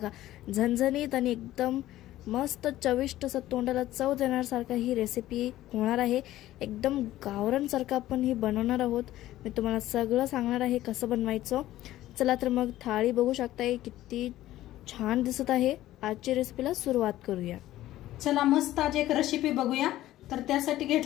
झणझणीत आणि एकदम मस्त चविष्ट असं तोंडाला चव देण्यासारखं ही रेसिपी होणार आहे। एकदम गावरानसारखं आपण ही बनवणार आहोत। मी तुम्हाला सगळं सांगणार आहे कसं बनवायचं। चला तर मग थाळी बघू शकताय किती छान दिसत आहे। आजची रेसिपीला सुरुवात करूया। चला मस्त आज एक रेसिपी बघूया। तर त्यासाठी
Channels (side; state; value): right; quieter; 14.7 dB